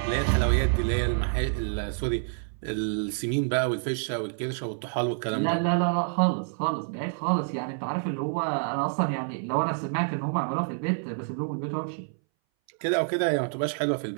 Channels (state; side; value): silent; left; 60 dB below the other